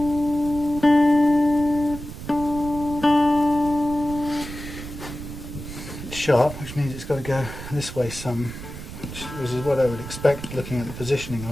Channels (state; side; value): noise; right; rumble, 11 dB below the sound